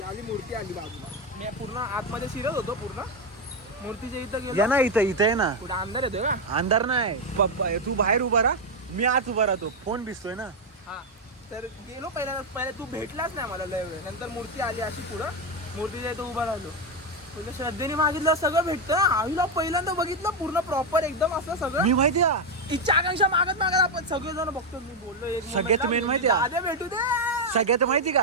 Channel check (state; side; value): normal; both; correlation 0.05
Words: आली मूर्ती आली बाजूला, मी पूर्ण आतमध्ये शिरत होतो, पूर्ण मूर्तीच्या इथं या गेलो. ना इथं आहे ना. कुठं अंधार येतोय का? अंधार नाही, तू बाहेर उभा राहा, मी आत उभा राहतो, फोन भिजतोय ना. हा तर गेलो पहिले तू भेटलाच नाही मला लय वेळ, नंतर मूर्ती आली अशी पुढं, मूर्तीच्या इथं उभा राहिलो, तुला श्रद्धेने मागितलं सगळं भेटतं. आईला पहिल्यांदा बघितलं पूर्ण प्रॉपर एकदम असं सगळं. मी माहिती आहे इच्छा आकांक्षा मागत आपण सगळेजण बघतो. मी बोललो एक सगळ्यात main माहिती आहे? आधे भेटू दे. सगळ्यात माहिती